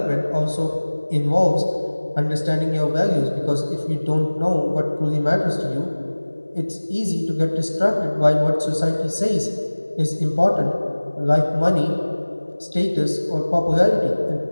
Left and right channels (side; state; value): both; inverted; correlation -1.00